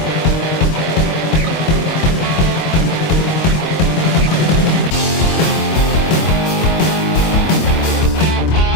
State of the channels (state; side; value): late; right; 25 ms